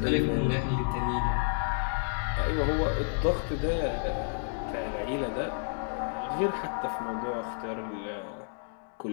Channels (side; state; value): right; silent; digital silence